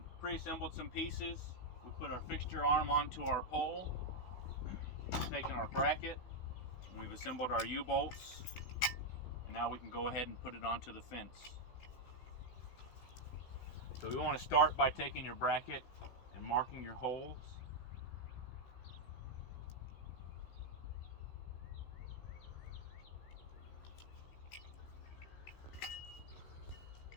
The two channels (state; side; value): late; right; 16 ms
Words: pre-assembled some pieces. We put our fixture arm onto our pole, taken our bracket, and we've assembled our U-bolts, and now we can go ahead and put it onto the fence. So we want to start by taking your bracket and marking your holes.